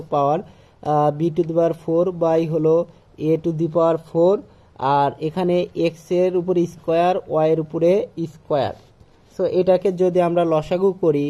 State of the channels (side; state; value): both; identical; correlation 1.00